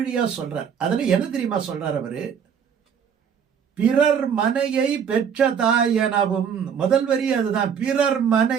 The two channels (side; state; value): left; quieter; 7.5 dB